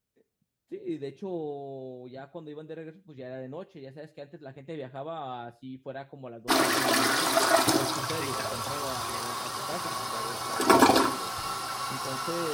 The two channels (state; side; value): identical; both; correlation 1.00